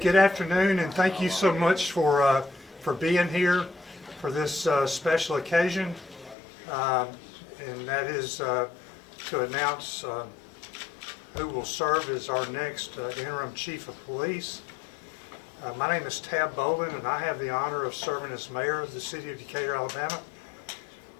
afternoon, and thank you so much for being here for this special occasion, and that is to announce who will serve as our next interim chief of police. My name is Tab Bolin, and I have the honor of serving as mayor of the city of Decatur, Alabama,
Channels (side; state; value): right; drops out; at 6.4 s